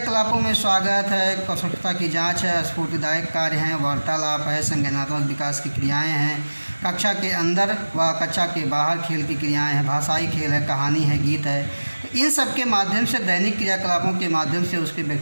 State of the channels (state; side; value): inverted; both; correlation -1.00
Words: में स्वागत है, स्वच्छता की जांच है, स्फूर्तिदायक कार्य हैं, वार्तालाप है, संज्ञानात्मक विकास की क्रियाएं हैं, कक्षा के अंदर व कक्षा के बाहर खेल की क्रियाएं हैं, भाषाई खेल है, कहानी है, गीत है। इन सब के माध्यम से दैनिक क्रियाकलापों के माध्यम से उसके